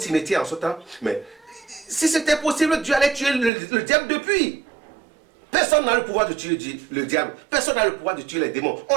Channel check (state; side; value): drops out; left; at 3.5 s